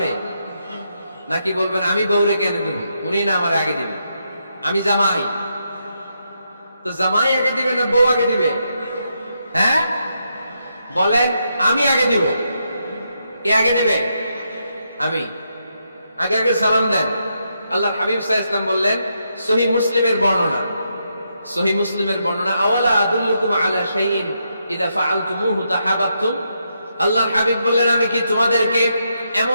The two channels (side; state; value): both; inverted; correlation -0.81